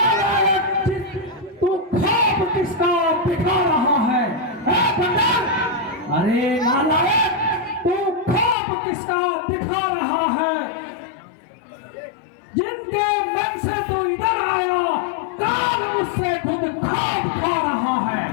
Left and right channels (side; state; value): right; drops out; at 8.6 s